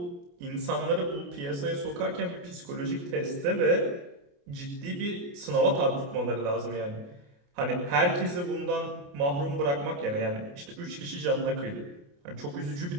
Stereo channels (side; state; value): left; late; 28 ms